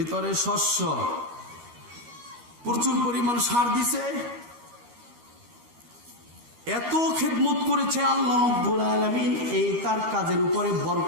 শস্য, প্রচুর পরিমাণ সার দিছে, এত খেদমত করেছে আল্লাহ রাব্বুল আলামিন, এই তার কাজের উপরে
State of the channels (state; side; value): late; left; 13 ms